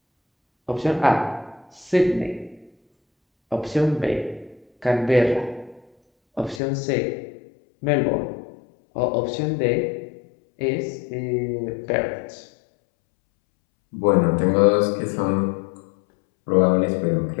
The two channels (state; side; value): drops out; right; at 6.6 s